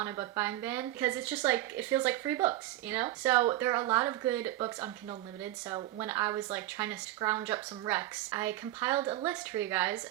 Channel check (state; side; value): quieter; left; 15.3 dB